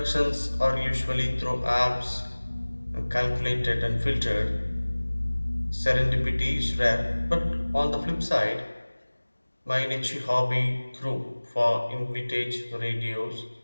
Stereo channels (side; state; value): both; inverted; correlation -1.00